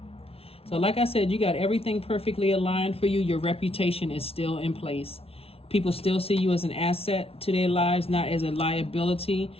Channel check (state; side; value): late; right; 0.28 ms